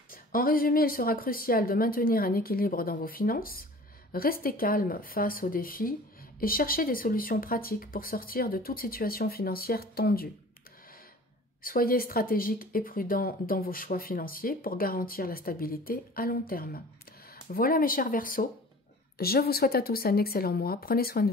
En résumé, il sera crucial de maintenir un équilibre dans vos finances, rester calme face aux défis et chercher des solutions pratiques pour sortir de toute situation financière tendue. Soyez stratégique et prudent dans vos choix financiers pour garantir la stabilité à long terme. Voilà mes chers Verseaux, je vous souhaite à tous un excellent mois, prenez soin de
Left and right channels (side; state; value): both; normal; correlation 0.44